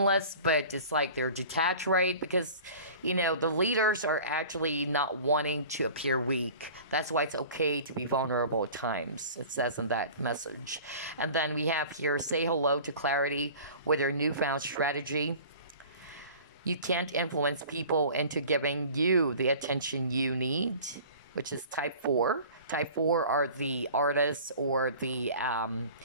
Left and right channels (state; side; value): inverted; both; correlation -0.43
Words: but it's like they're detached, right? Because, you know, the leaders are actually not wanting to appear weak. That's why it's okay to be vulnerable at times. It says in that message. And then we have here, say hello to clarity with your newfound strategy. You can't influence people into giving you the attention you need, which is type 4. Type 4 are the artists or the